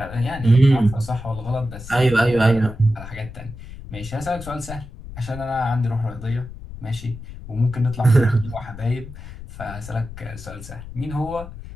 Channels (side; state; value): left; noise; rumble, 13 dB below the sound